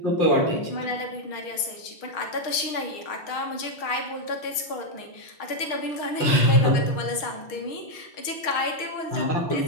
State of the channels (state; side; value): late; right; 6.4 ms